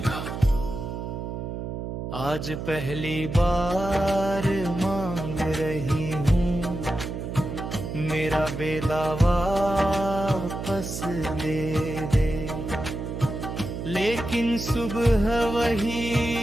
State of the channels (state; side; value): noise; right; hum, 6 dB below the sound